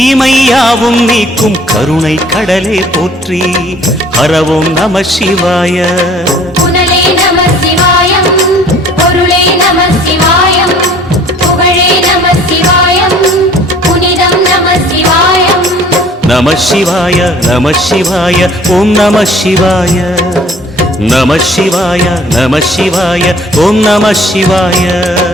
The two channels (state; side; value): normal; both; correlation 0.53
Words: நீக்கும் கருணை கடலே போற்றி. ஹர ஓம் நம சிவாய. புனலே நம சிவாயம், பொருளே நம சிவாயம், புகழே நம சிவாயம், புனிதம் நம சிவாயம். நம சிவாய நம சிவாய ஓம் நம சிவாய. நம சிவாய நம சிவாய ஓம் நம சிவாய.